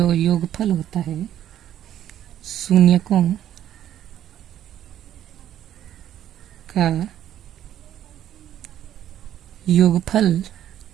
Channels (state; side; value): quieter; left; 11.3 dB